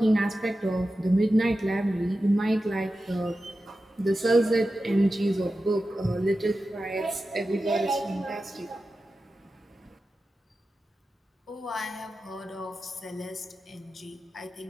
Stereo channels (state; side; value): normal; both; correlation 0.93